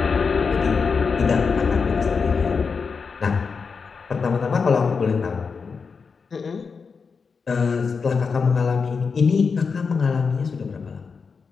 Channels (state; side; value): quieter; right; 5.3 dB